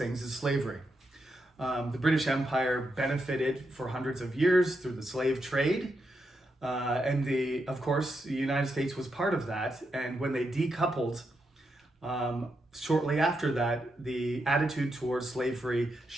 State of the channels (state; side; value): normal; both; correlation 0.84